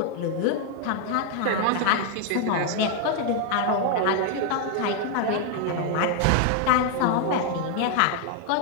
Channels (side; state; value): both; different; correlation 0.00